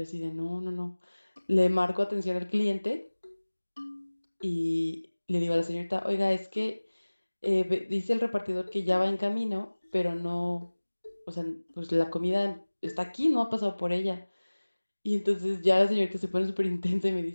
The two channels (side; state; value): both; inverted; correlation -1.00